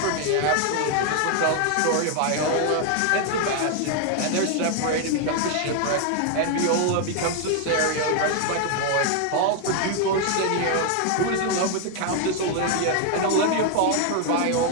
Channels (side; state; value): both; different; correlation 0.00